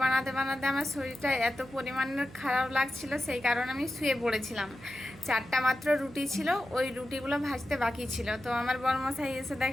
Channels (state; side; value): noise; right; hum, 20 dB below the sound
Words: বানাতে বানাতে আমার শরীরটা এত পরিমাণের খারাপ লাগছিল, সেই কারণে আমি শুয়ে পড়েছিলাম। 4টা মাত্র রুটি ছিল, ওই রুটিগুলো ভাজতে বাকি ছিল। তো আমার বড়মশাই এসে